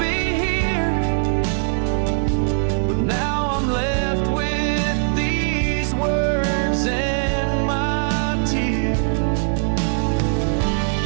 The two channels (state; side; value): silent; left; digital silence